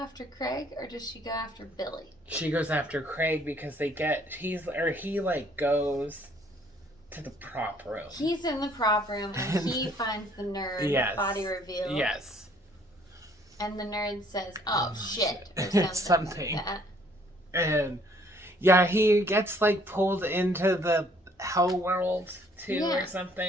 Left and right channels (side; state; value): both; normal; correlation 0.61